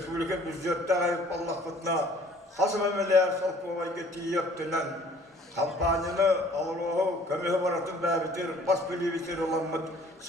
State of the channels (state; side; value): normal; both; correlation 0.55